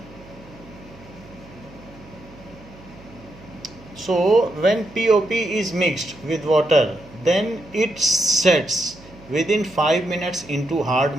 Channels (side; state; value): right; noise; hum, 22 dB below the sound